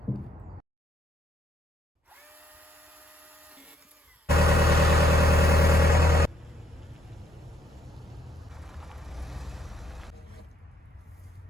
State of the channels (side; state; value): both; normal; correlation 0.70